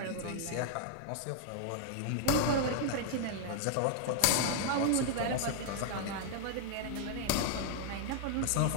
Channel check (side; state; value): both; different; correlation 0.00